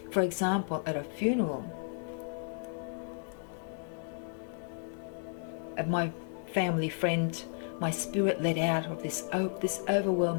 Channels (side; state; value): right; silent; digital silence